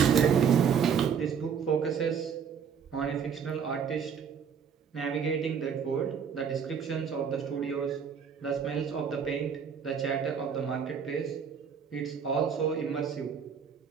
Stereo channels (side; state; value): left; quieter; 7.0 dB